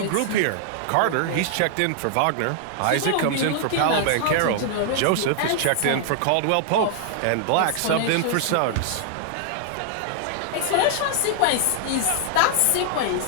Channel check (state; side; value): different; both; correlation -0.01